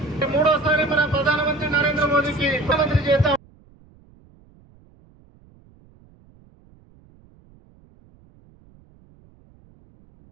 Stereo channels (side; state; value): right; noise; rumble, 29 dB below the sound